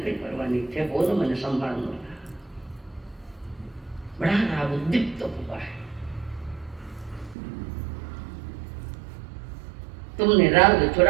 परवाह नहीं थे, वो ना मैंने संभालना। बड़ा राग उद्दीप्त हुआ है। तुमने राग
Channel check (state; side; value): drops out; left; at 7.4 s